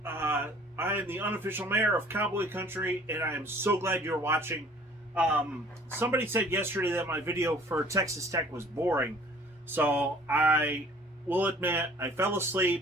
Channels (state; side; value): normal; both; correlation 0.52